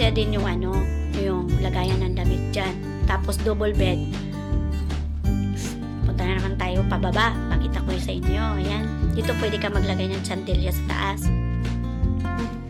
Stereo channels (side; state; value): both; identical; correlation 1.00